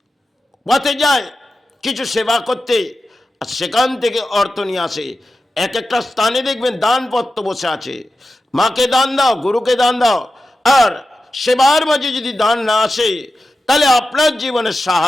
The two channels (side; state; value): both; normal; correlation 0.92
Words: পথে যায় কিছু সেবা করতে, আর সেখান থেকে অর্থ নিয়ে আসে। এক একটা স্থানে দেখবেন দানপত্র বসে আছে, মাকে দান দাও, গুরুকে দান দাও। আর সেবার মাঝে যদি দান না আসে তাহলে আপনার জীবনে